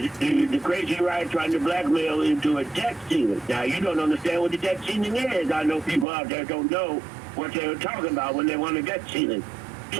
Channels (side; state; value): left; drops out; at 6.1 s